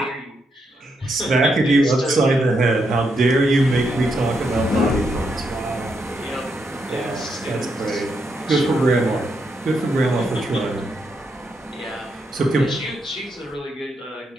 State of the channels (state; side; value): normal; both; correlation 0.80